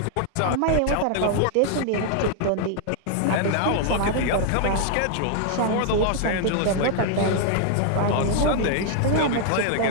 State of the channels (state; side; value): different; both; correlation 0.00